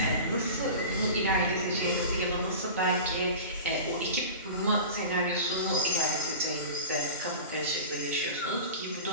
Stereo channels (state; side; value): inverted; both; correlation -0.35